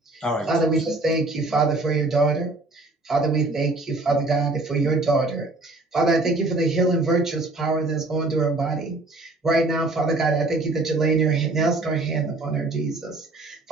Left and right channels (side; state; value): left; quieter; 3.0 dB